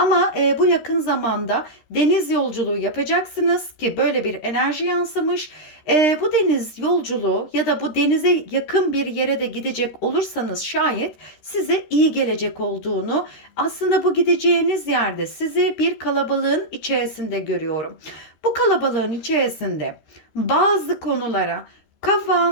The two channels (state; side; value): late; right; 13 ms